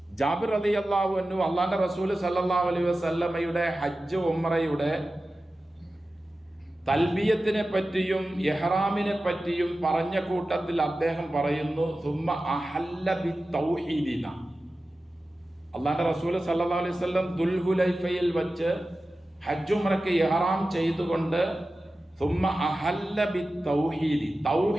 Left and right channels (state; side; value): normal; both; correlation 0.95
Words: ജാബിർ റളിയല്ലാഹു അൻഹു അല്ലാഹുവിന്റെ റസൂൽ സല്ലല്ലാഹു അലൈഹി വസല്ലമയുടെ ഹജ്ജ് ഉംറയുടെ തൽബിയത്തിനെ പറ്റിയും ഇഹ്റാമിനെ പറ്റിയും പറഞ്ഞ കൂട്ടത്തിൽ അദ്ദേഹം പറയുന്നു, സുമ്മ അഹല്ല ബിത്തൗഹീദിന. അല്ലാഹുവിന്റെ റസൂൽ സല്ലല്ലാഹു അലൈഹി വസല്ലം ദുൽഹുലൈഫയിൽ വെച്ച് ഹജ്ജ് ഉംറയ്ക്ക് ഇഹ്റാം ചെയ്തുകൊണ്ട് സുമ്മ അഹല്ല ബിത്തൗഹീദി,